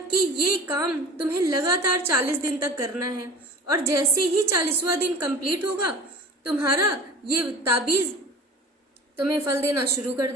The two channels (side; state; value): both; normal; correlation 0.40